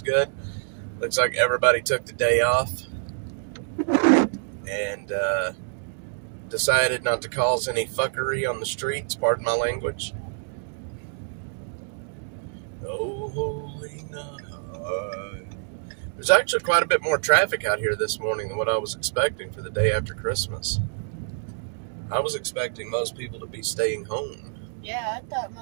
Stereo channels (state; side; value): silent; left; digital silence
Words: good. Looks like everybody took the day off and decided not to cause any fuckery on the streets, pardon my language. Oh, holy night. There's actually quite a bit more traffic out here this morning than what I was expecting for the day after Christmas. I was expecting most people to be staying home. Yeah, I thought